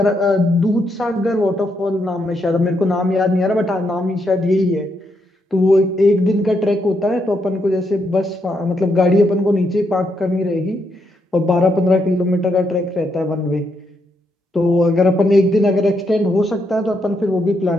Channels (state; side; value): normal; both; correlation 0.79